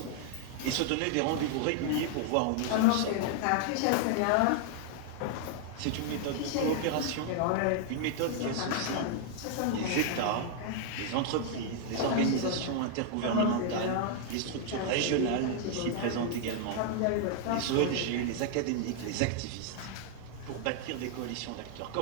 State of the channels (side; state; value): both; different; correlation 0.00